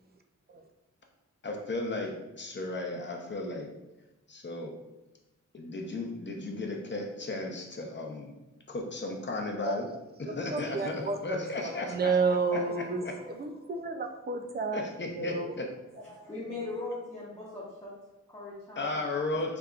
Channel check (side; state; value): both; normal; correlation 0.24